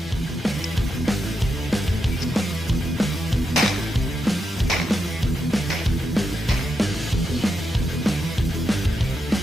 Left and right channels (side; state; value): both; normal; correlation 0.85